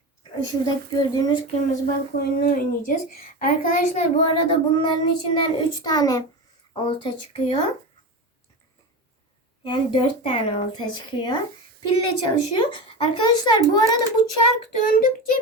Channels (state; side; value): normal; both; correlation 0.23